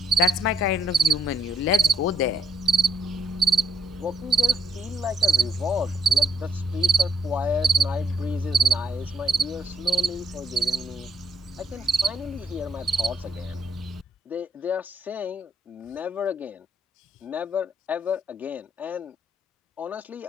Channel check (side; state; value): both; normal; correlation 0.72